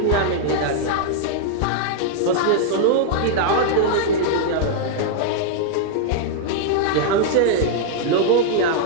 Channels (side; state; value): both; different; correlation -0.01